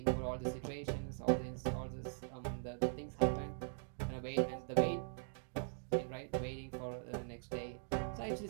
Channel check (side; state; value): left; silent; digital silence